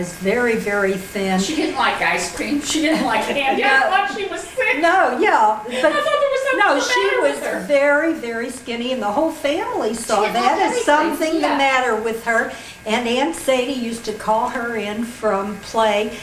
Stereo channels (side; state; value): both; identical; correlation 1.00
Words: very, very thin. She didn't like ice cream. She didn't like candy. I thought she was sick. No, yeah, but I thought there was something no, the she matter was with her. very, very skinny, and the whole family saw didn't like that as anything, something yeah. the matter with her. And Aunt Sadie used to call her in from play,